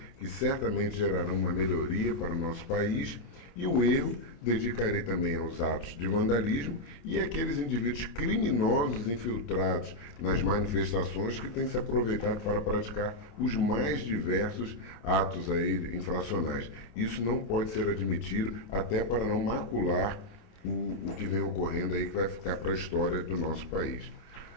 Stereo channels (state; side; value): late; right; 28 ms